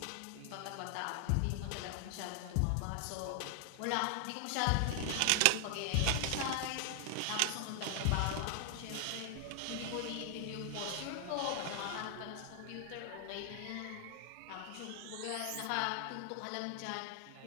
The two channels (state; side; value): different; both; correlation 0.00